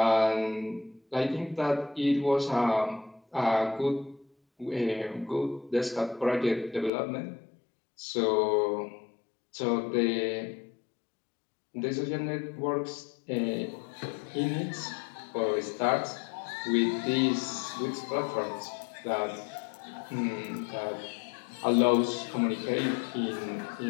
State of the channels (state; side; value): drops out; right; at 6.9 s